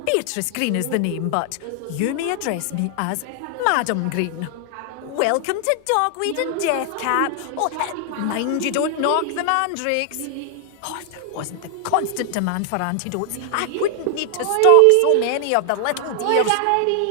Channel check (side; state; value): both; different; correlation 0.00